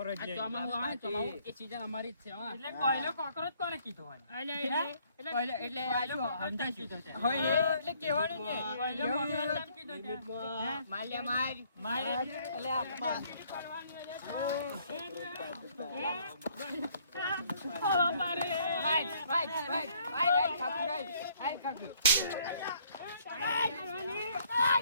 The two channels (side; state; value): both; inverted; correlation -0.64